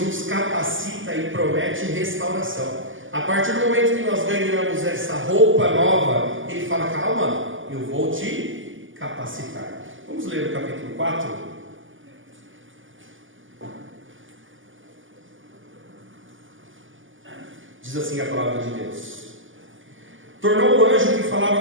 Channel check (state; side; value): late; left; 0.58 ms